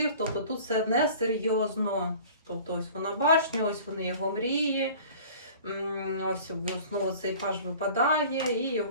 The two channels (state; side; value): inverted; both; correlation -0.45